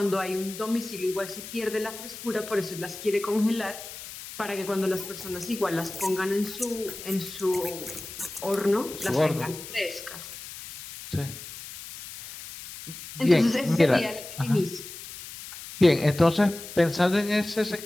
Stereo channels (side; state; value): left; noise; hiss, 12 dB below the sound